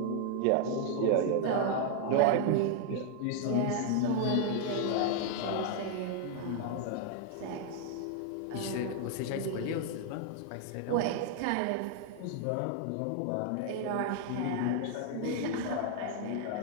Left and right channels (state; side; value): different; both; correlation 0.00